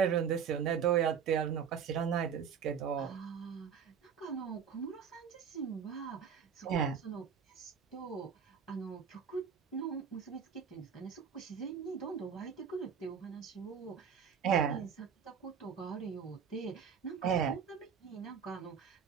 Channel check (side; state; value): left; quieter; 7.3 dB